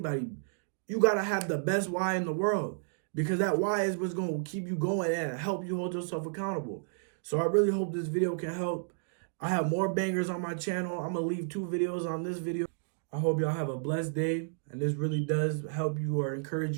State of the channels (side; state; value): left; silent; digital silence